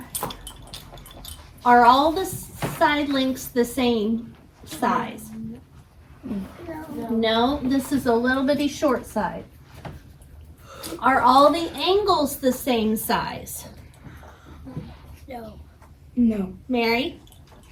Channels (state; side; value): identical; both; correlation 1.00